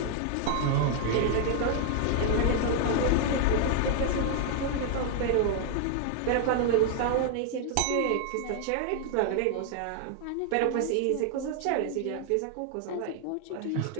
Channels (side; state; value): both; different; correlation 0.00